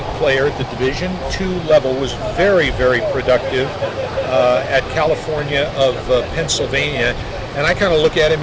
player at the Division II level, was very productive at California of Pennsylvania, and I kind of look at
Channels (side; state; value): both; identical; correlation 1.00